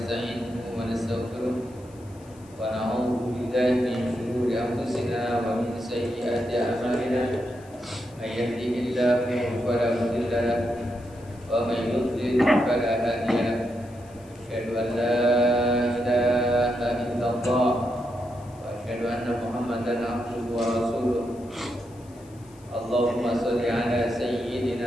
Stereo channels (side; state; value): left; noise; hiss, 27 dB below the sound